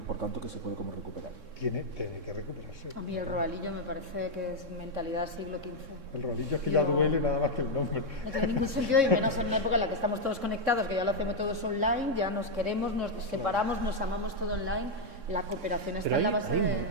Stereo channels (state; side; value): late; left; 3.6 ms